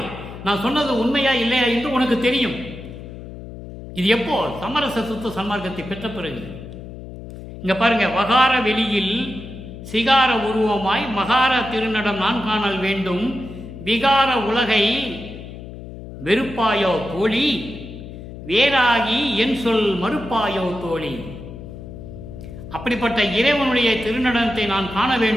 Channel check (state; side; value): noise; left; hum, 13 dB below the sound